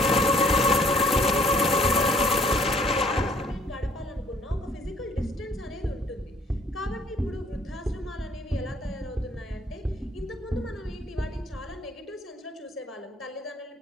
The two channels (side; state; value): both; normal; correlation 0.60